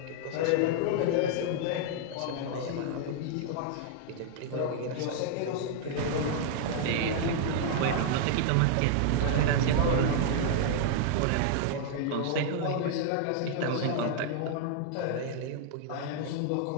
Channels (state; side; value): different; both; correlation -0.01